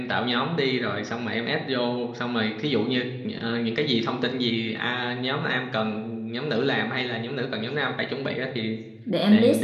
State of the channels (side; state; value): both; identical; correlation 1.00